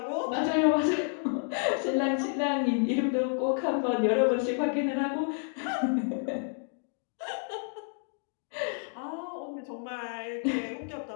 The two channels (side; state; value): right; silent; 58 dB below the other